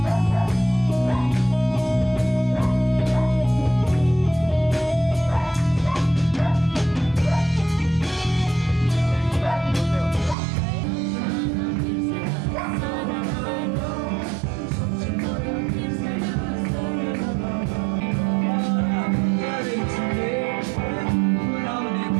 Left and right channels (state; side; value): drops out; left; at 10.4 s